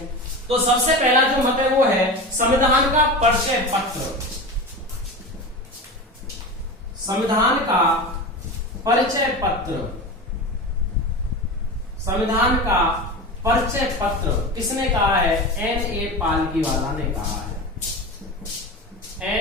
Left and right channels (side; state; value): both; normal; correlation 0.27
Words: तो सबसे पहला जो मत है वो है संविधान का परिचय पत्र। संविधान का परिचय पत्र, संविधान का परिचय पत्र किसने कहा है? N.A. पालकीवाला ने कहा है।